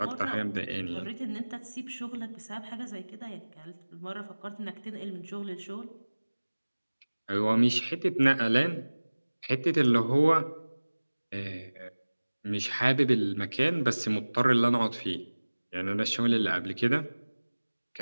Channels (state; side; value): inverted; both; correlation -1.00